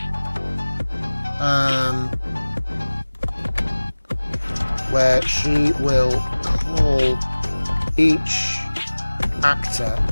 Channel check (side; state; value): both; inverted; correlation -1.00